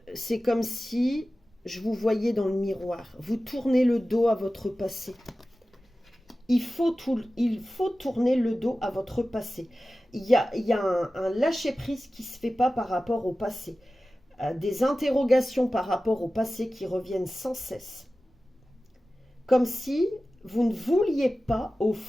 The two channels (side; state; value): both; normal; correlation 0.95